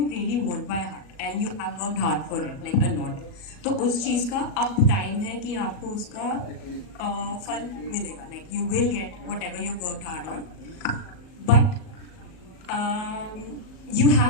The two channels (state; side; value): late; right; 38 ms